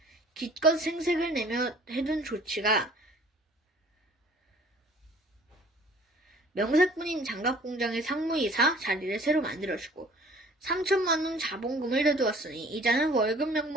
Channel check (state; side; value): normal; both; correlation 0.52